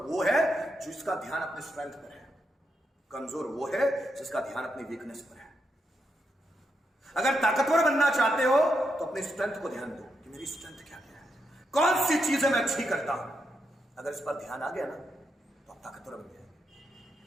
वो है जिसका ध्यान अपने स्ट्रेंथ पर है, कमजोर वो है जिसका ध्यान अपनी वीकनेस पर है। अगर ताकतवर बनना चाहते हो तो अपनी स्ट्रेंथ को ध्यान दो कि मेरी स्ट्रेंथ क्या है, कौन सी चीजें मैं अच्छी करता हूं। अगर इस पर ध्यान आ गया ना तो आप ताकतवर बन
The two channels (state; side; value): normal; both; correlation 0.83